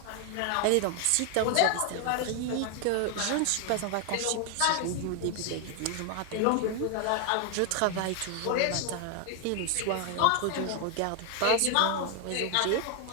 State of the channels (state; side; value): different; both; correlation 0.00